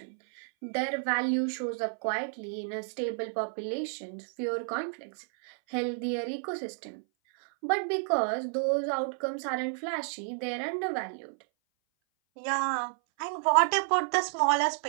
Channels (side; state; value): left; silent; 57 dB below the other